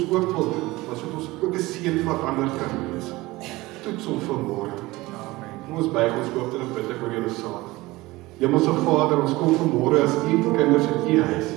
ook wil doen, sodat ons ook 'n seën vir ander kan wees. Toets ons vanmôre. Kom ons buig ons hoofde en bid ek oor julle saad. Hemelse Vader, ons kom vanmôre as u kinders in u huis,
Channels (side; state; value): left; quieter; 20.1 dB